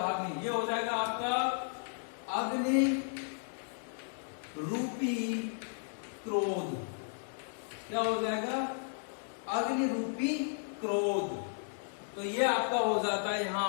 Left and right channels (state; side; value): silent; right; digital silence